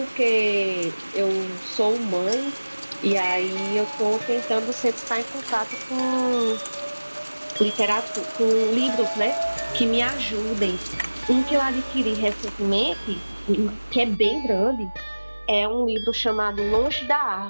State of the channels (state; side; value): inverted; both; correlation -1.00